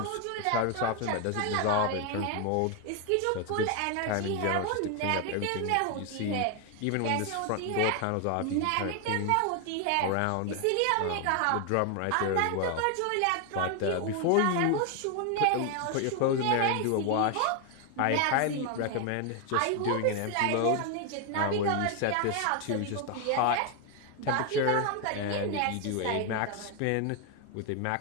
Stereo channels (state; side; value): different; both; correlation 0.01